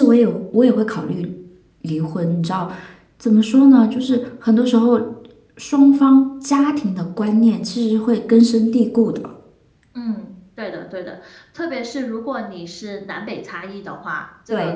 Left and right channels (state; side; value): identical; both; correlation 1.00